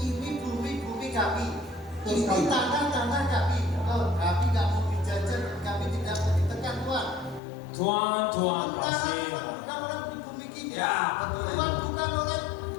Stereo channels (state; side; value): drops out; right; at 7.4 s